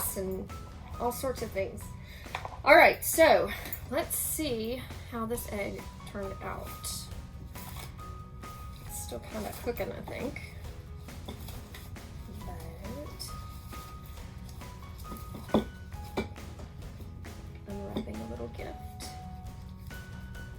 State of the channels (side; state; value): both; identical; correlation 1.00